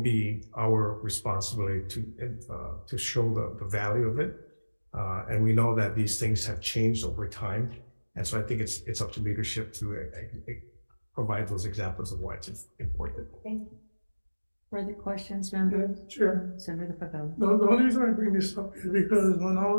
be our responsibility to show the value of it. And we know that these things have changed over time. And so I think it's up to leadership to provide those examples of why it's important. Thank you. Further questions, members? Sure. Senator Pavel. The only reason I bring this up is because when I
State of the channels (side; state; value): both; inverted; correlation -1.00